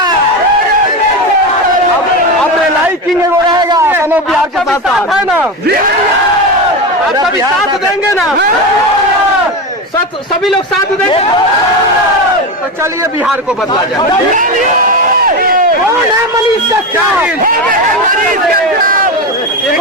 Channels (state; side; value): normal; both; correlation 0.18